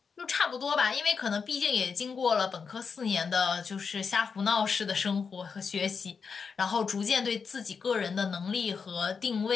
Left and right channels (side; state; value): right; quieter; 5.6 dB